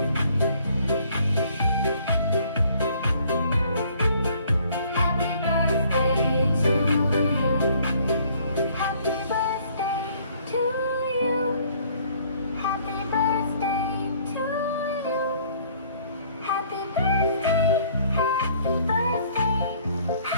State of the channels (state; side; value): inverted; both; correlation -0.60